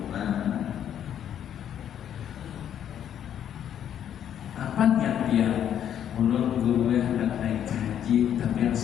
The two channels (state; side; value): quieter; right; 9.8 dB